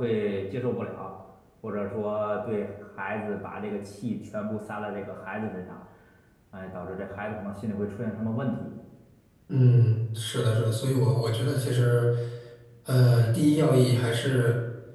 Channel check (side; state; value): both; identical; correlation 1.00